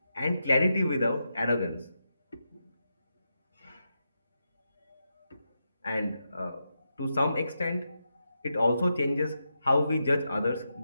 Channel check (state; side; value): inverted; both; correlation -0.86